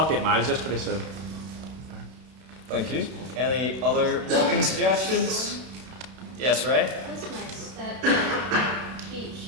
8 miles yesterday, so. Thank you. Any other walking suggestions? Yes, Ray? That's nice, that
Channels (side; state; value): left; late; 32 ms